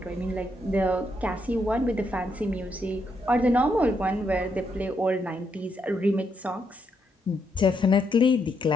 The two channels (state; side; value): normal; both; correlation 0.78